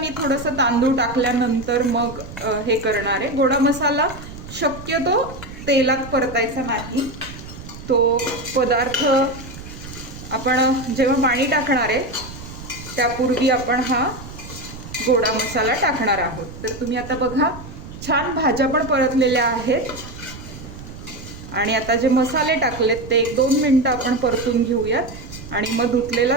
थोडंसं तांदूळ टाकल्यानंतर मग हे करणार आहे. गोडा मसाला शक्यतो तेलात परतायचा नाही. तो पदार्थ आपण जेव्हा पाणी टाकणार आहे त्यापूर्वी आपण हा गोडा मसाला टाकणार आहोत. तर तुम्ही आता बघा, छान भाज्या पण परतलेल्या आहेत. आणि आता जे मसाले टाकलेत ते 1-2 मिनटं आपण परतून घेऊयात. आणि मग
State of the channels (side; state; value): right; noise; rumble, 13 dB below the sound